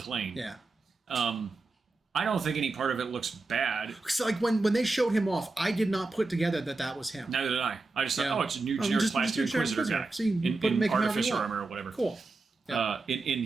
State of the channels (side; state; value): left; quieter; 3.4 dB